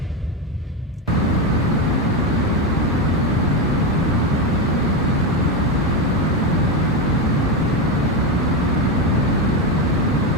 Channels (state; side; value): normal; both; correlation 0.12